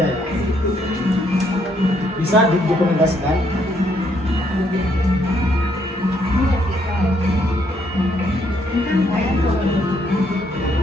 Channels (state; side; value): normal; both; correlation 0.71